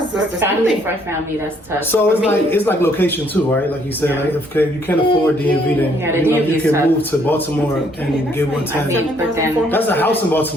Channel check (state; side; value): normal; both; correlation 0.66